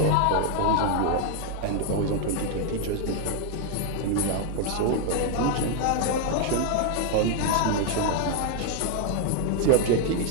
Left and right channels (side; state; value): both; different; correlation 0.00